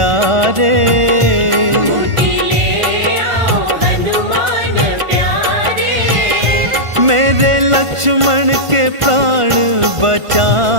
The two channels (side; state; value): left; late; 1.5 ms